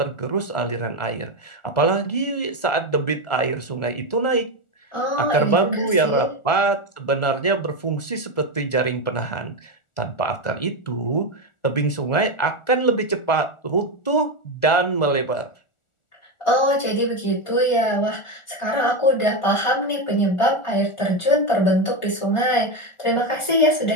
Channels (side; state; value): right; late; 1.4 ms